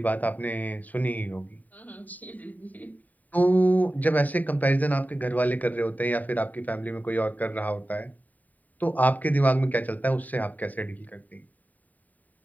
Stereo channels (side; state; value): right; late; 0.078 ms